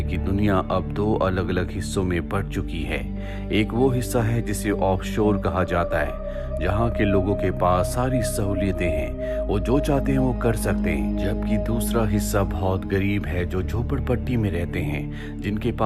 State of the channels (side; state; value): both; identical; correlation 1.00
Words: कि दुनिया अब दो अलग अलग हिस्सों में बढ़ चुकी है। एक वो हिस्सा है जिसे ऑफशोर कहा जाता है, जहां के लोगों के पास सारी सहूलियतें हैं, वो जो चाहते हैं वो कर सकते हैं। जबकि दूसरा हिस्सा बहुत गरीब है, जो झोपड़पट्टी में रहते हैं, जिनके